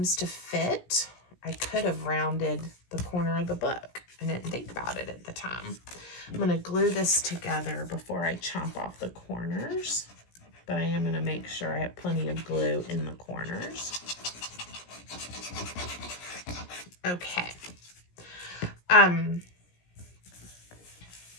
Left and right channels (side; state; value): right; late; 17 ms